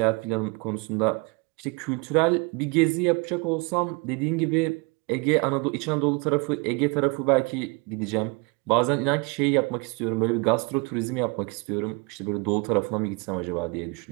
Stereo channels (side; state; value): left; quieter; 29.6 dB